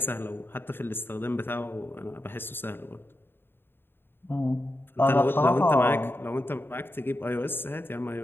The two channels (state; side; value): late; right; 0.10 ms